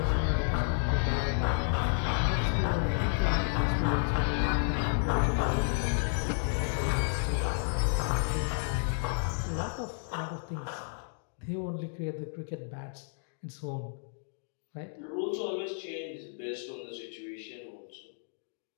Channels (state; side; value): silent; right; digital silence